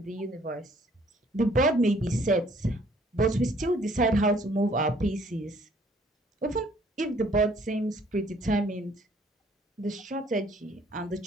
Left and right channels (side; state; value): both; normal; correlation 0.60